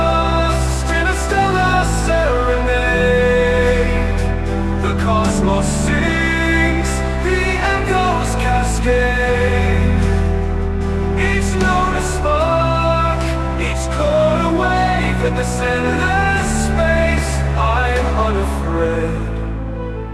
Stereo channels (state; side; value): identical; both; correlation 1.00